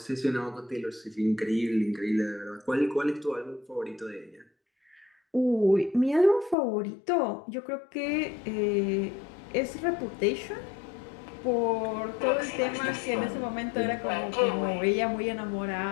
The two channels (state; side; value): drops out; right; at 6.6 s